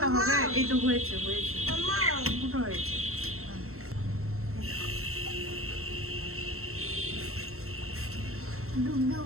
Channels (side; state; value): left; late; 0.63 ms